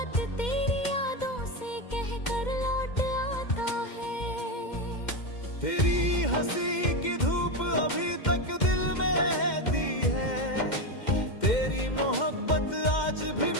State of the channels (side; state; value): right; late; 2.1 ms